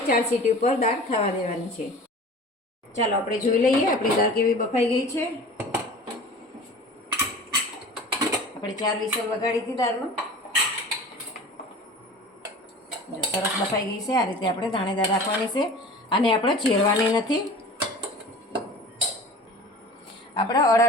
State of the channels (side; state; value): both; normal; correlation 0.40